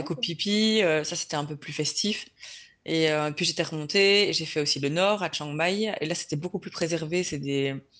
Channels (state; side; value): identical; both; correlation 1.00